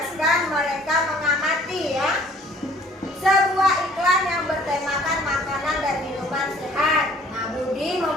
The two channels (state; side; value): normal; both; correlation 0.54